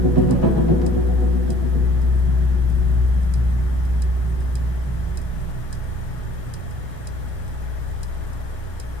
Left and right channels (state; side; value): late; left; 1.3 ms